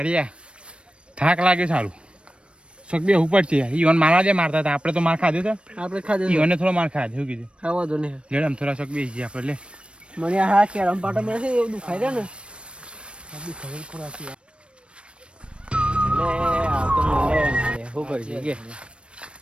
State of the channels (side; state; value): left; late; 0.058 ms